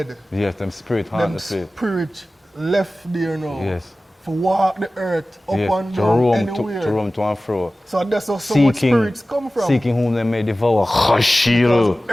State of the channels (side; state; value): both; normal; correlation 0.97